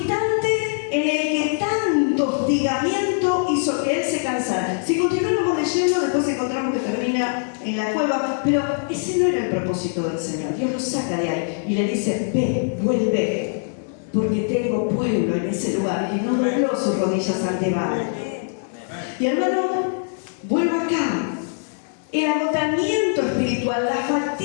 en el que tanto hostigamiento hizo que él se cansara. Si continuamos leyendo, después encontramos que termina en la cueva, pero ese no era el propósito del Señor. Dios lo saca de ahí y le dice, ve, vuelve, porque tengo pueblo en ese lugar. Y no dobló sus rodillas ante Baal. Y hermano, vuelvo acá. El agotamiento espiritual, la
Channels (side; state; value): right; silent; digital silence